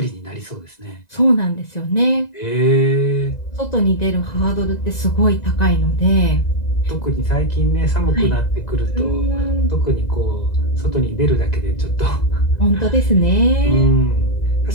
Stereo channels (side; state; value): right; late; 2.0 ms